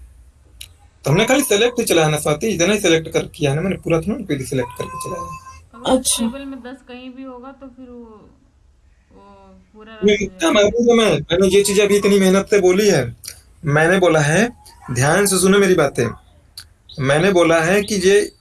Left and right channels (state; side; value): identical; both; correlation 1.00